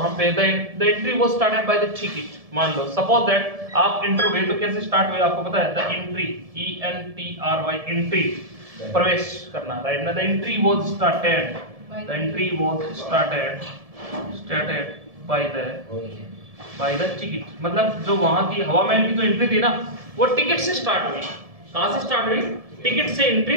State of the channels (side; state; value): left; late; 1.7 ms